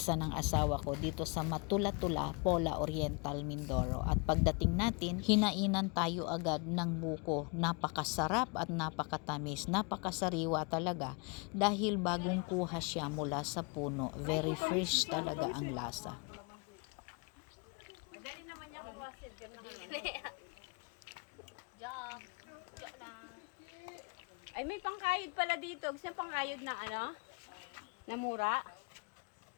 ng asawa ko dito sa Matula-Tula, Pola Oriental, Mindoro. At pagdating natin, hinainan tayo agad ng buko. Napakasarap at napakatamis. Napakasariwa talaga dahil bagong kuha siya mula sa puno. Very fresh talaga ang lasa. Madali naman niya kawasid. Joke. Joke lang. Ay, may pangkayod pala dito. Gusto niya pangkayod na ano? Na mura?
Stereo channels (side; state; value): right; quieter; 32.9 dB